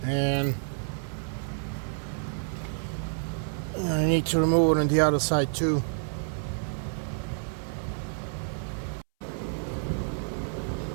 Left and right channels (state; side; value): silent; left; 59 dB below the other